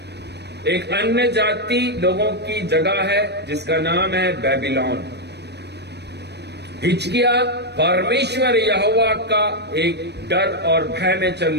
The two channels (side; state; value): left; late; 0.49 ms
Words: एक अन्य जाति लोगों की जगह है जिसका नाम है बेबीलोन। हिचकिया परमेश्वर यहोवा का एक डर और भय में